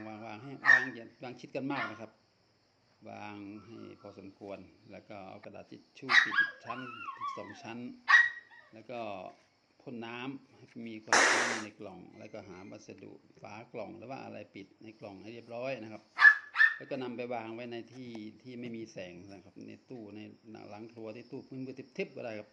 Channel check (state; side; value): identical; both; correlation 1.00